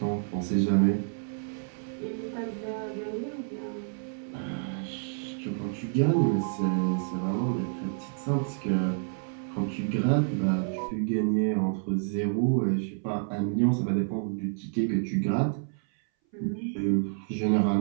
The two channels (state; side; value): silent; left; 59 dB below the other